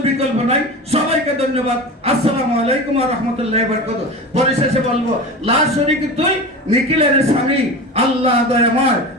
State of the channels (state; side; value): normal; both; correlation 0.29